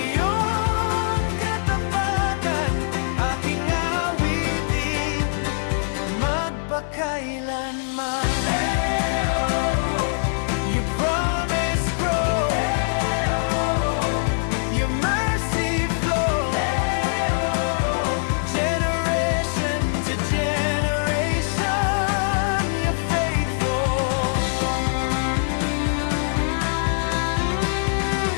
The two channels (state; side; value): silent; right; digital silence